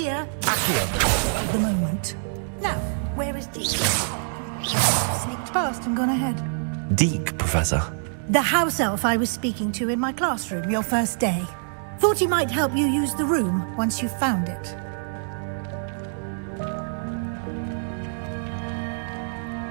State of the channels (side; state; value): left; silent; digital silence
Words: you can take advantage of the moment. Now, where is Deke? You must have sneaked past and gone ahead. Deke, Professor. The house elf I was speaking to in my classroom your first day. Thought he might help you use the room once you found it.